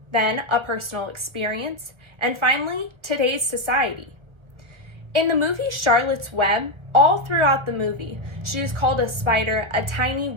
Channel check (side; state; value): left; late; 1.4 ms